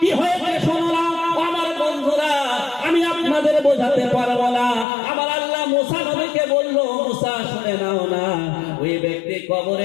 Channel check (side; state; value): right; drops out; at 4.9 s